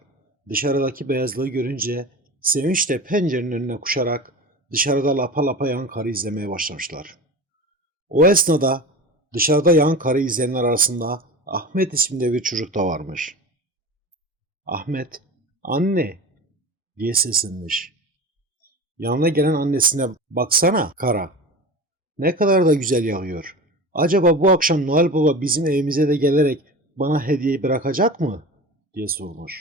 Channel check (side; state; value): both; normal; correlation 0.31